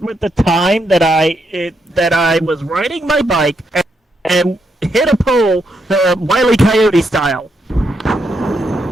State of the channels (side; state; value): both; normal; correlation 0.79